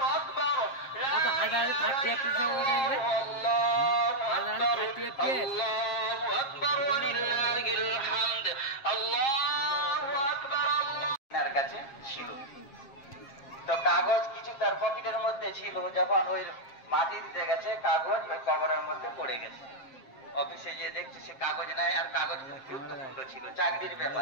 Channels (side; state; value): right; late; 7.5 ms